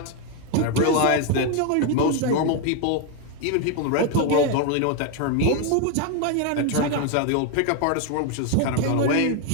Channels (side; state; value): both; different; correlation 0.01